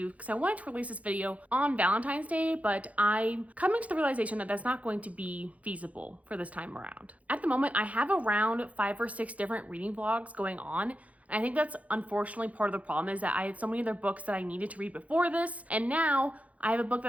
because I wanted to release this video on Valentine's Day, but I'm coming to the realization that that's not going to be feasible for this time around. At the moment, I have around 5 or 6 different reading vlogs going on. And I think that's unfortunately part of the problem, is that I had so many other books that I needed to read before this, and now I have a book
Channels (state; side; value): late; left; 0.068 ms